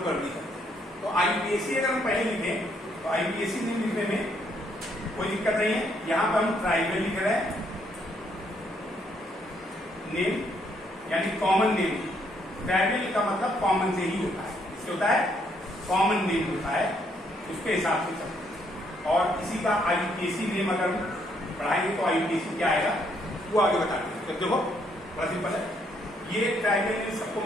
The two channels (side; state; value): both; normal; correlation 0.71